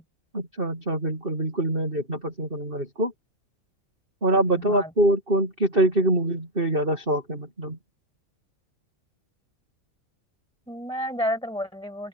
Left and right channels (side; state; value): left; late; 2.7 ms